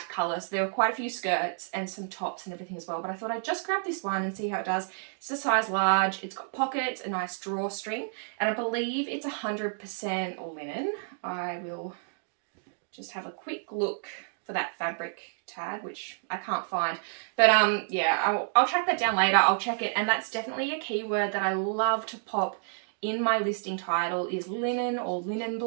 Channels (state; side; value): silent; left; digital silence